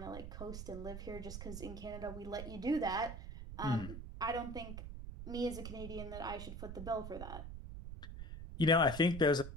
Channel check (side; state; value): right; noise; rumble, 8 dB below the sound